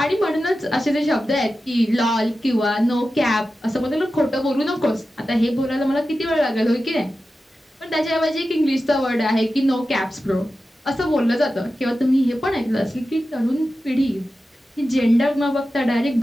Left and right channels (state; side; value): normal; both; correlation 0.93